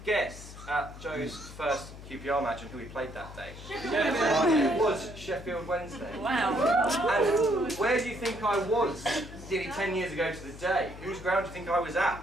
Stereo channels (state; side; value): noise; left; hum, 14 dB below the sound